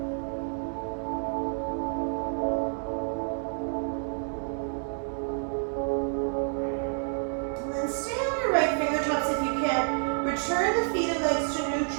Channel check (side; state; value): left; silent; 59 dB below the other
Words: And then stay on your right fingertips if you can. Return the feet and legs to